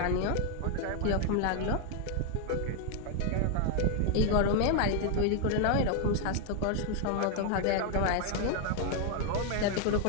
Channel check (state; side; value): different; both; correlation 0.00